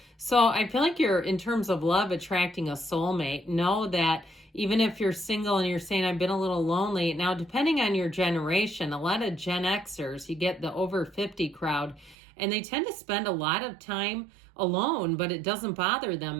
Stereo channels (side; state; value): left; drops out; at 12.2 s